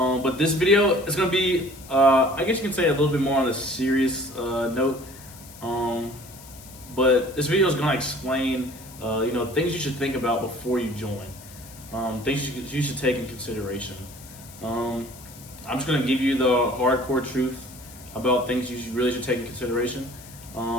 this video is gonna be, I guess you can say, a little bit more on a serious note. But this video is gonna explain, things you should think about before you join. Things you should take in consideration. I'm just gonna give you the hardcore truth about things you really should take in consideration.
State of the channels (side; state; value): left; noise; hiss, 19 dB below the sound